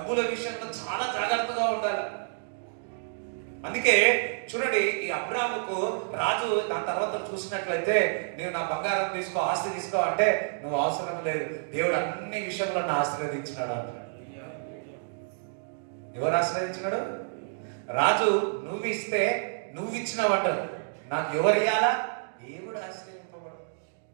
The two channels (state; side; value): silent; left; digital silence